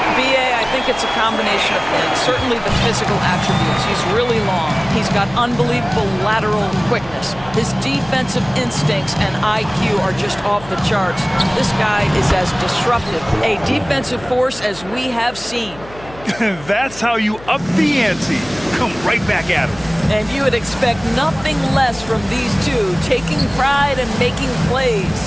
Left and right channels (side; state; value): left; noise; hum, 19 dB below the sound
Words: B.A., I think it's a combination of things. Certainly the physical attributes. He's really long. He's got unbelievable lateral quickness. His defensive instincts and IQ are just off the charts. This guy is as disruptive, a defensive force as we have seen. That's how you up the ante. come right back at him. And you would expect nothing less from these two, taking pride and making plays.